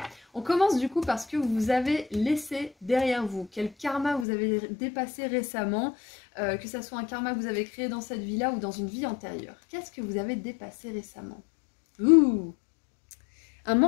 on commence du coup parce que vous avez laissé derrière vous. Quel karma vous avez dépassé récemment, que ce soit un karma que vous avez créé dans cette vie-là ou dans une vie antérieure. Qu'est-ce que vous avez dépassé récemment? Ouh! Un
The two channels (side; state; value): right; drops out; at 4.2 s